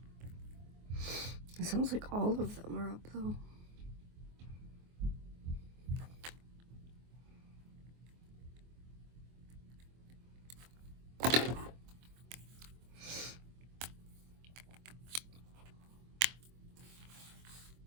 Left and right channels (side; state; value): left; late; 24 ms